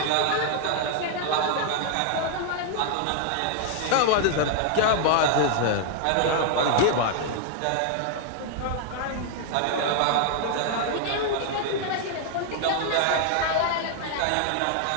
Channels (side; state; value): both; different; correlation 0.00